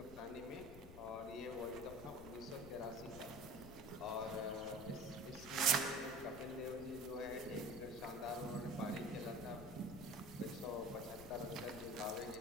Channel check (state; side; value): noise; left; rumble, 14 dB below the sound